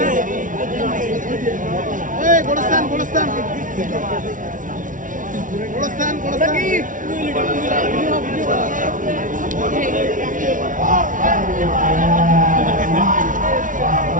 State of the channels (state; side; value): late; left; 0.38 ms